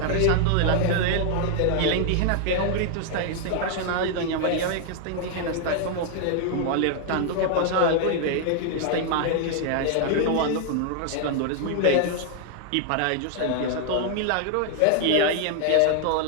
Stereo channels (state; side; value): different; both; correlation 0.00